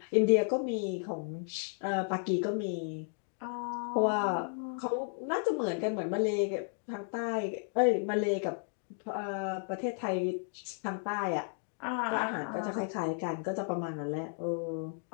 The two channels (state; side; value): silent; right; 55 dB below the other